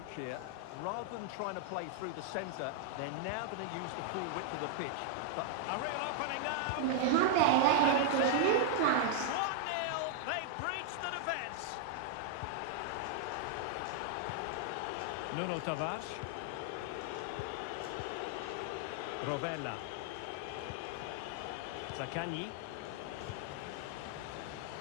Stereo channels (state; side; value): different; both; correlation 0.00